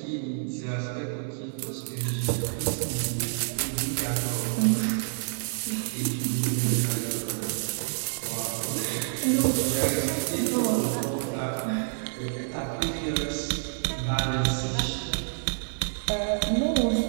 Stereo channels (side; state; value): left; silent; 59 dB below the other